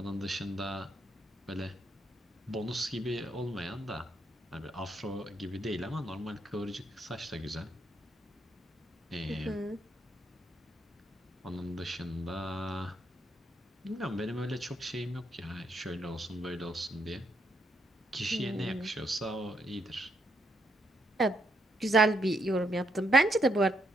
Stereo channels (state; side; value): normal; both; correlation 0.76